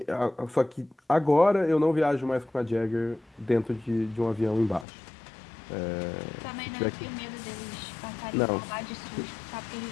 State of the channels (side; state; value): right; drops out; at 4.9 s